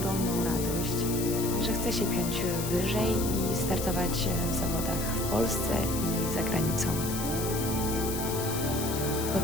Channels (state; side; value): noise; left; hiss, 6 dB below the sound